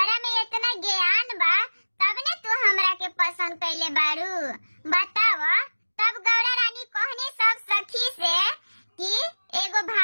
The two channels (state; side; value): inverted; both; correlation -1.00